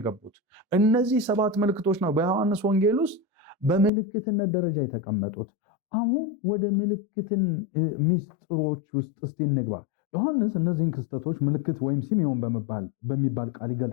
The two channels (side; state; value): right; drops out; at 3.9 s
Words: እነዚህ 7 ምልክቶች ነው በዮሐንስ ወንጌል ውስጥ በምልክትነት ደረጃ የተቀመጡት። አሁን ወደ ምልክትን ሚስጥሮች ውስጥ እስቲ እንግባ። ዮሐንስ እነዚህን ክስተቶች ምልክት ወይም ሲሜዮን በሚባል ቃል